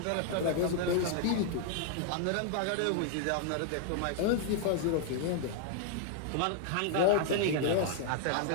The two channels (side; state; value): both; different; correlation -0.01